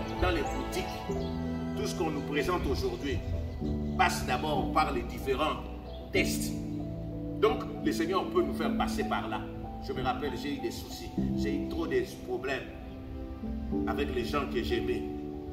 dans les boutiques, tout ce qu'on nous présente aujourd'hui, passe d'abord par les différents tests. Donc, le Seigneur peut nous faire passer par là. Je me rappelle, j'ai eu des soucis, j'ai eu trop de problèmes avec les gens que j'aimais.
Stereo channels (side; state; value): both; identical; correlation 1.00